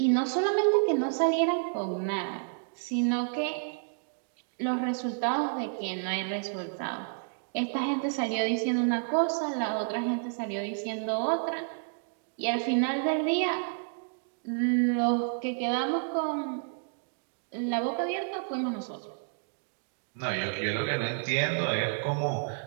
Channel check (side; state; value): left; silent; digital silence